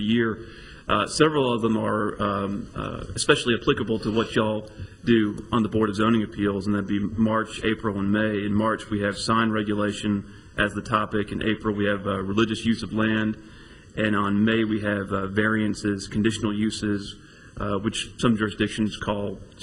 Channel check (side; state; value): both; identical; correlation 1.00